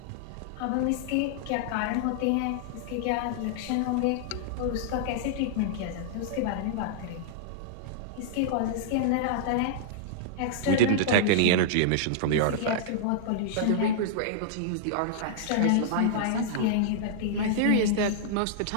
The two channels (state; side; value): different; both; correlation -0.01